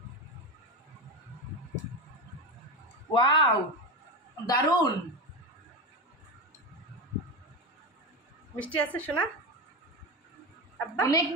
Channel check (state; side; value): normal; both; correlation 0.18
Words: ওয়াও, দারুন। মিষ্টি আছে শোনা? আব্বা অনেক